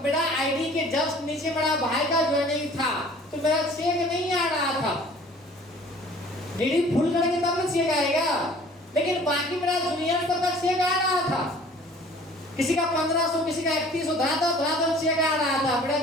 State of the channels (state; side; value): normal; both; correlation 0.50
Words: मेरा आईडी के जस्ट नीचे मेरा भाई का ज्वाइनिंग था तो मेरा चेक नहीं आ रहा था। डीडी फुल करेंगे तब ना चेक आएगा, लेकिन बाकी मेरा जूनियर सबका चेक आ रहा था। किसी का 1500, किसी का 3100 धड़ा चेक आ रहा था, मेरा